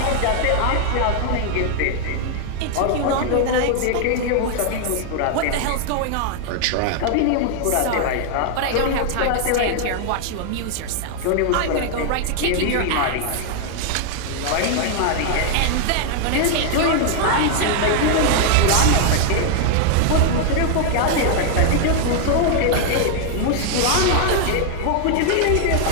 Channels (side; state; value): both; different; correlation 0.00